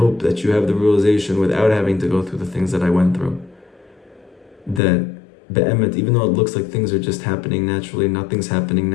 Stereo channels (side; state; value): right; drops out; at 4.8 s